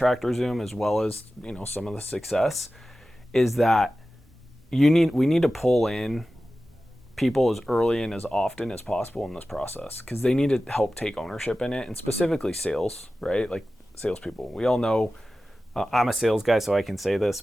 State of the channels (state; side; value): normal; both; correlation 0.95